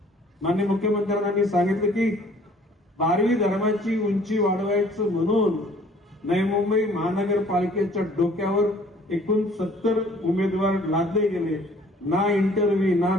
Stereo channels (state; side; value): normal; both; correlation 0.55